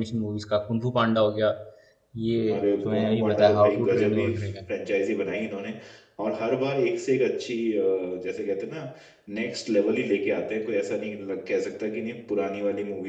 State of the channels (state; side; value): identical; both; correlation 1.00